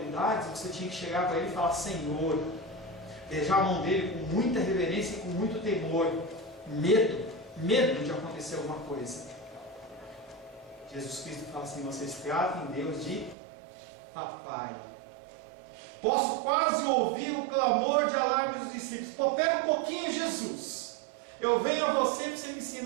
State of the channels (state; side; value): drops out; left; at 13.4 s